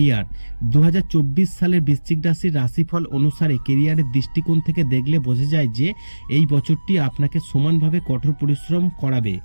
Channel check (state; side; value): inverted; both; correlation -1.00